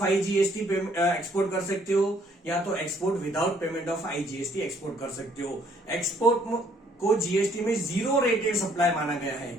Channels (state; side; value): normal; both; correlation 0.64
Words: IGST export कर सकते हो या तो export without payment of IGST export कर सकते हो। एक्सपोर्ट को जीएसटी में जीरो रेटेड सप्लाई माना गया है।